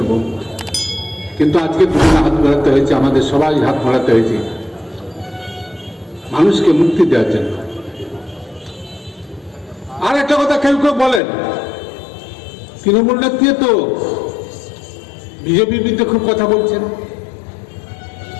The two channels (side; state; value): right; drops out; at 11.2 s